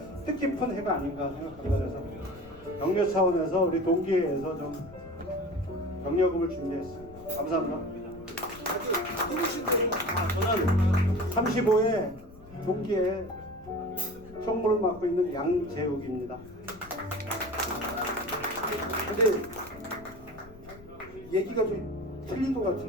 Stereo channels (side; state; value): left; noise; rumble, 20 dB below the sound